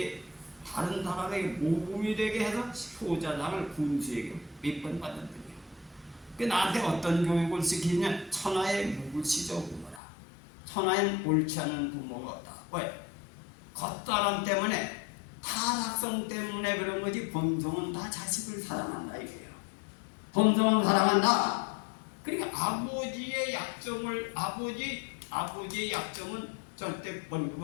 다른 사람에게 모범이 되게 해서 효자상을 군수에게 몇 번 받은 분이에요. 그 나한테 어떤 교육을 시키냐? 천하의 무구시저 부모라. 천하엔 옳지 않은 부모가 없다. 왜? 겉사람 때문에 타락성 때문에 그런 거지 본성은 다 자식을 사랑한다 이거예요. 본성은 사랑한다. 그러니까 아버지의 약점은 절대 번복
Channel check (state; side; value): drops out; right; at 10.0 s